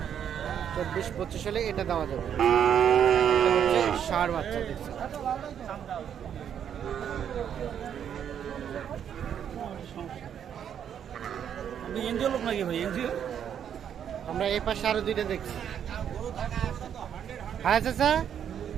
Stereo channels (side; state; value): left; quieter; 8.8 dB